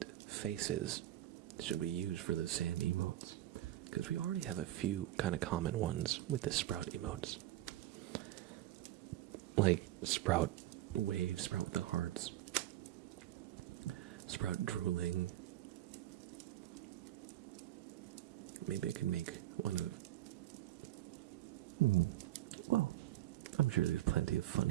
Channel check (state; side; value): quieter; left; 14.3 dB